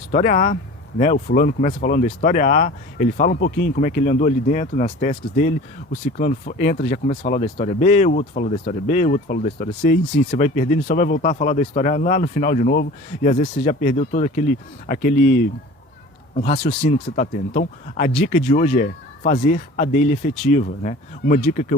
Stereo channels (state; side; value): normal; both; correlation 0.41